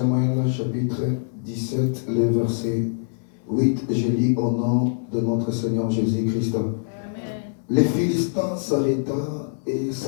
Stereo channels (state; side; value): silent; right; digital silence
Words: chapitre 17, le verset 8, je lis au nom de notre Seigneur Jésus-Christ. Les Philistins s'arrêta et